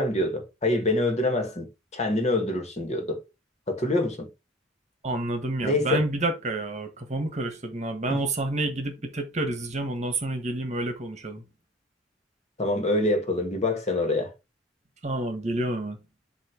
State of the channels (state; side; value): normal; both; correlation 0.41